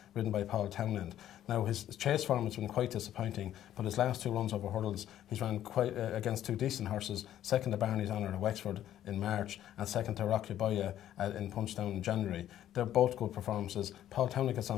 ridden by Paul Townend. Now his chase form has been quite disappointing, but his last 2 runs over hurdles, he's ran quite against 2 decent horses, second to Barney's Honour at Wexford in March and second to Rocky Boya in Punchtown in January. They're both good performances. Paul Townend gets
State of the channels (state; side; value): quieter; right; 11.8 dB